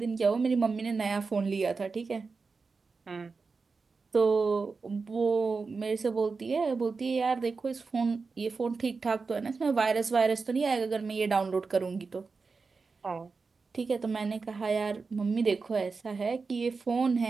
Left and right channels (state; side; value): quieter; left; 4.5 dB